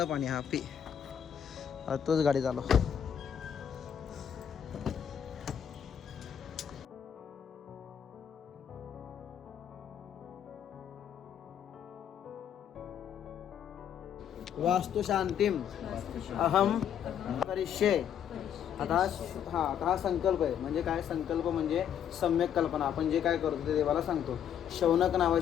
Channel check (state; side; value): quieter; right; 9.0 dB